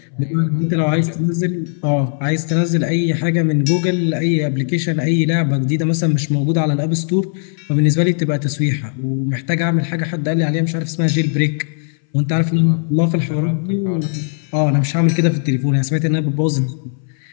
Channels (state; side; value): silent; right; 63 dB below the other